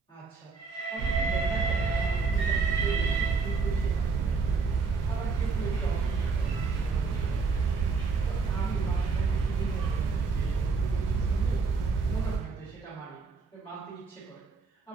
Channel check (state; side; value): quieter; left; 4.6 dB